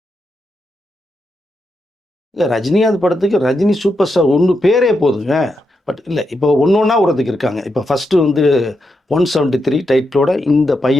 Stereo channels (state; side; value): normal; both; correlation 0.84